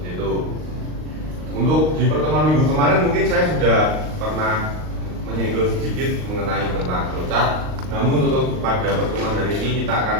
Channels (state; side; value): late; left; 39 ms